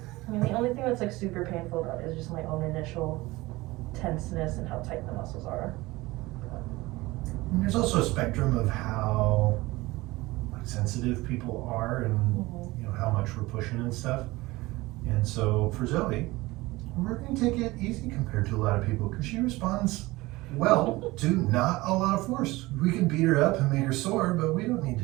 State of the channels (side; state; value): left; quieter; 20.4 dB